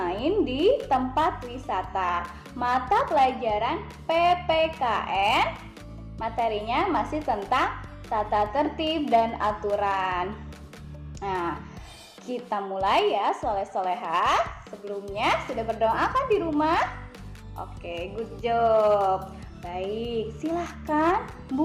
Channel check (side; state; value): both; identical; correlation 1.00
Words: di tempat wisata. Mata pelajaran PPKN, materinya masih tentang tata tertib dan aturan. Nah, kita mulai ya soleh-solehah. Sebelumnya sudah berdoa kan di rumah? Oke, good job. Baik, silahkan